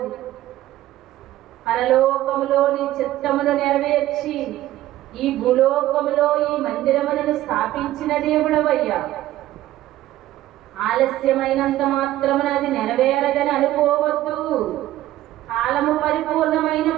పరలోకములో నీ చిత్తమును నెరవేర్చి ఈ భూలోకములో ఈ మందిరములను స్థాపించిన దేవుడవయ్యా. ఆలస్యమైనంత మాత్రమున అది నెరవేరదని అనుకోవద్దు. కాలము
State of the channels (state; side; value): quieter; left; 14.7 dB